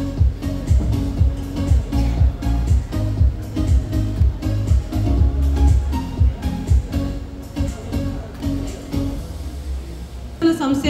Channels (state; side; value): identical; both; correlation 1.00